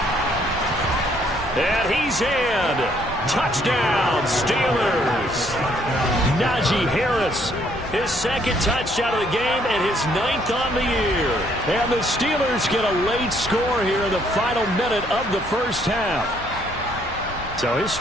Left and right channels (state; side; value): normal; both; correlation 0.67